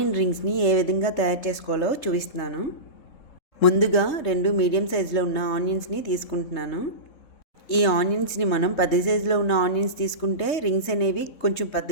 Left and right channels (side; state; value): right; late; 3.2 ms